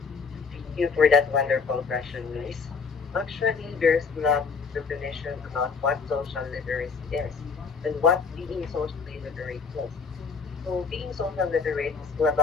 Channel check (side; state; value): right; quieter; 5.2 dB